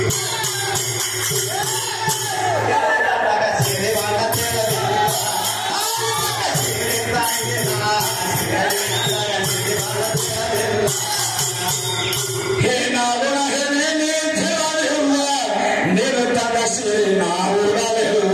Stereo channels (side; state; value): both; identical; correlation 1.00